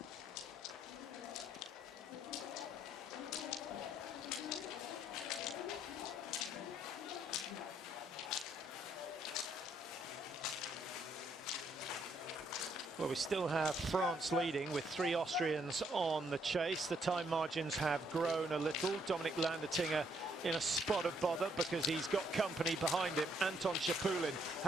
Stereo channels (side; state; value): both; normal; correlation 0.71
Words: Well, we still have France leading with 3 Austrians on the chase. The time margins have grown a little. Dominic Landertinger in a spot of bother because he's got company behind him. Anton Shapulin